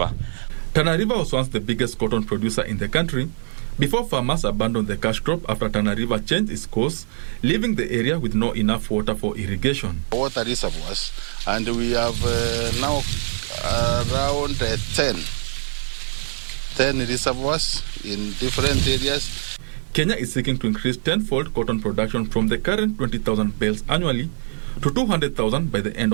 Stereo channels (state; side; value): silent; left; digital silence